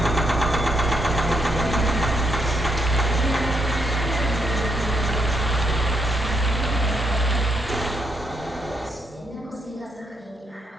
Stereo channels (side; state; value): both; normal; correlation 0.77